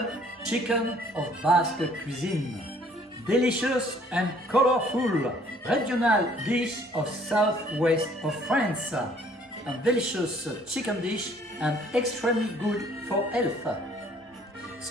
chicken of Basque cuisine. Delicious and colorful regional dish of southwest of France. A delicious chicken dish and extremely good for health.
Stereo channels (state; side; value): normal; both; correlation 0.59